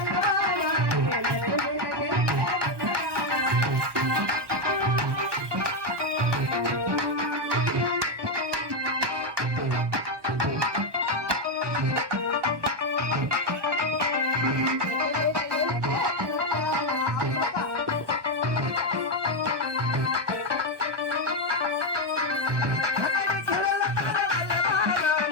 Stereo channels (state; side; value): late; left; 1.2 ms